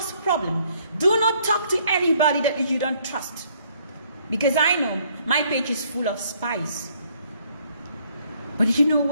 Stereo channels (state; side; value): inverted; both; correlation -0.66